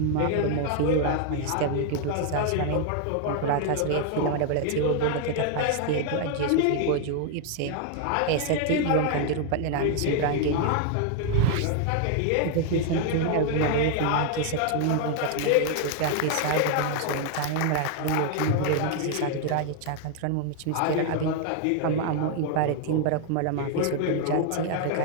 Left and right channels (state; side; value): different; both; correlation 0.00